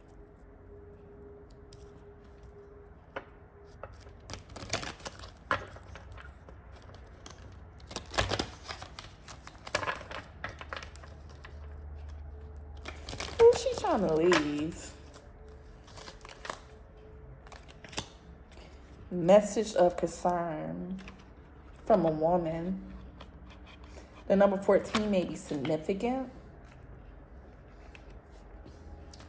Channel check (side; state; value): both; identical; correlation 1.00